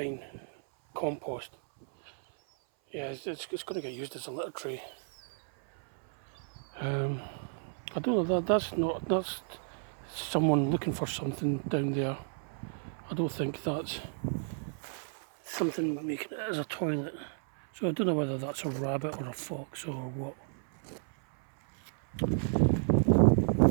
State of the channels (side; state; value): left; silent; 56 dB below the other